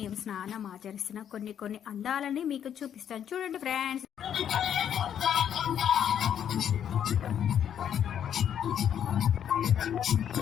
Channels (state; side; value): quieter; right; 9.2 dB